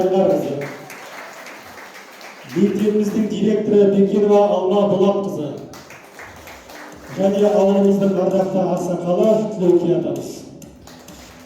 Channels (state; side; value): identical; both; correlation 1.00